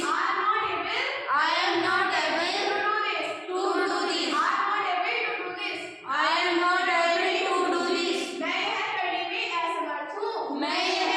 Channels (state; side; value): identical; both; correlation 1.00